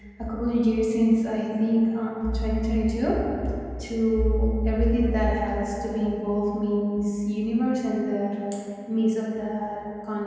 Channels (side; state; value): both; identical; correlation 1.00